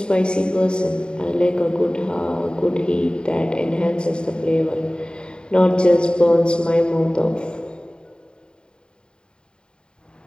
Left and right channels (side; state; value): right; late; 0.049 ms